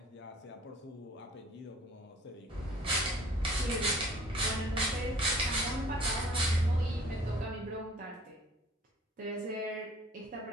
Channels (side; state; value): both; normal; correlation 0.53